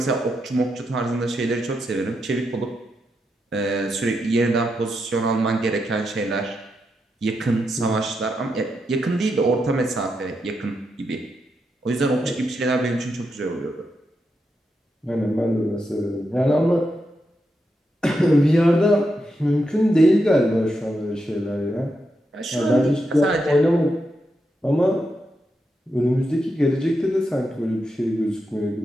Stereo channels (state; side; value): normal; both; correlation 0.84